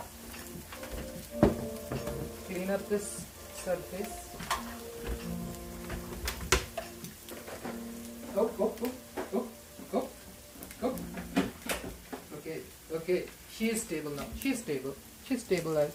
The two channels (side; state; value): both; identical; correlation 1.00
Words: Clean up this surface. Oh. Okay. She is stable now. She's stable. She's